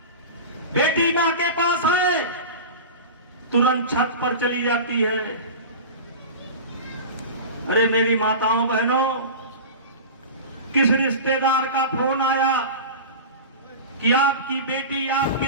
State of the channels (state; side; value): inverted; both; correlation -0.31